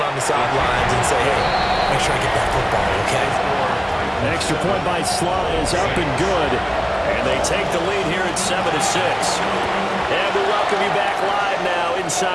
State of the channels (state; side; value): identical; both; correlation 1.00